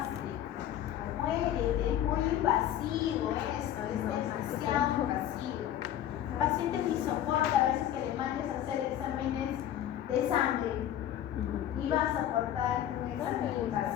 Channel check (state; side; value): quieter; right; 11.4 dB